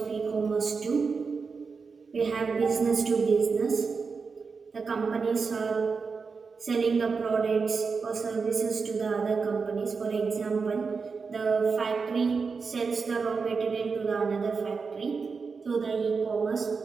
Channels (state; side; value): quieter; left; 5.0 dB